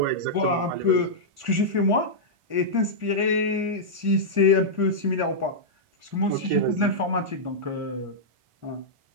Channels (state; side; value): late; left; 1.4 ms